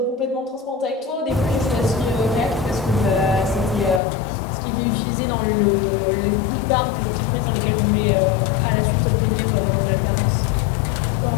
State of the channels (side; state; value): right; drops out; at 4.0 s